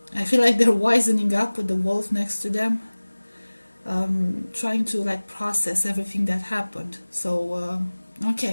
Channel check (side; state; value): both; inverted; correlation -1.00